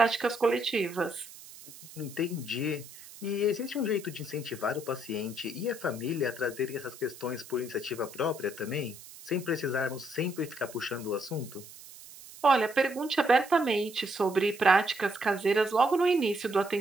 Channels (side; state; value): right; noise; hiss, 17 dB below the sound